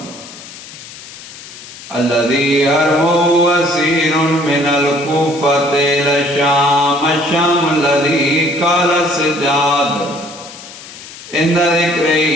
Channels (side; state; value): left; noise; hiss, 16 dB below the sound